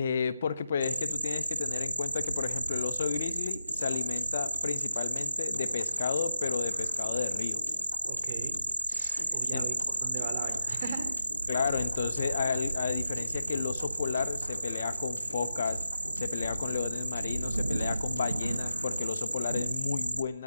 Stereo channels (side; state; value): both; inverted; correlation -0.88